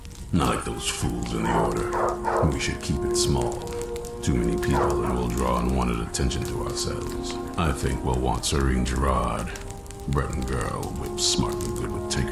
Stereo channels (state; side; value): identical; both; correlation 1.00